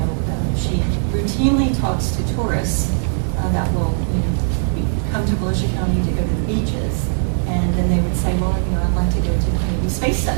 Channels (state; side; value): silent; left; digital silence